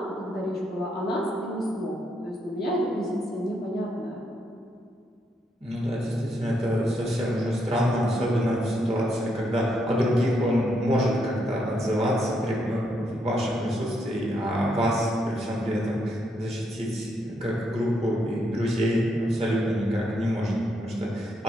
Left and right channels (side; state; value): both; normal; correlation 0.77